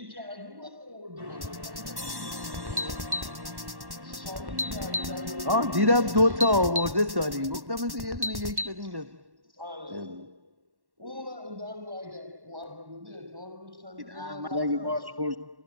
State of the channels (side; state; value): left; late; 1.1 ms